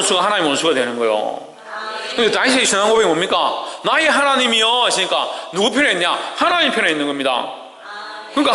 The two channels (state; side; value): identical; both; correlation 1.00